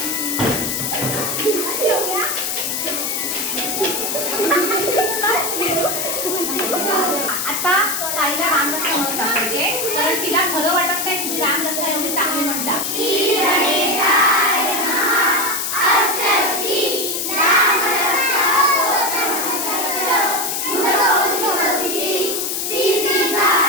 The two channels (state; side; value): noise; left; hiss, 1 dB below the sound